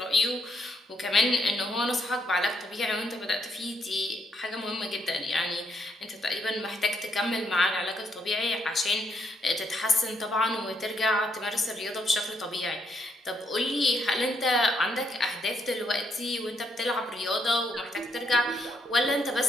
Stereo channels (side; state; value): both; normal; correlation 0.75